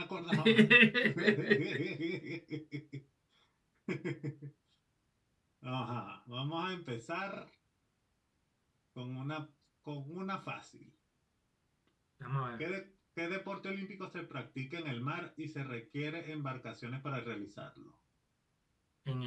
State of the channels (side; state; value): both; identical; correlation 1.00